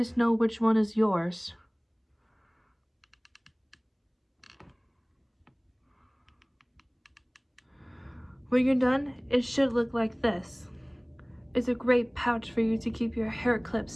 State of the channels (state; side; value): identical; both; correlation 1.00